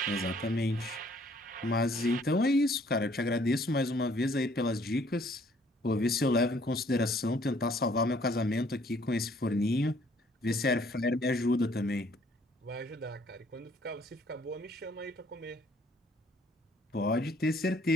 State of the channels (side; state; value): both; normal; correlation 0.62